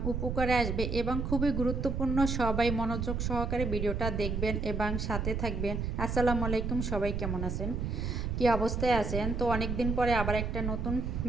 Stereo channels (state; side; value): noise; right; rumble, 1 dB below the sound